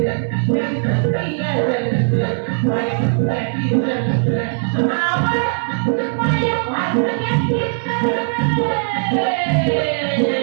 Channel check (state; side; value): silent; left; digital silence